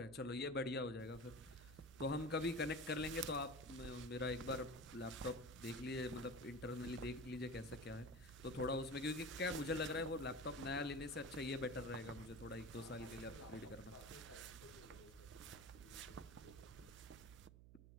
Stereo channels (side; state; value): right; noise; hum, 16 dB below the sound